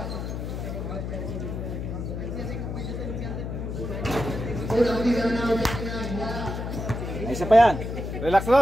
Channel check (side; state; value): left; noise; hum, 5 dB below the sound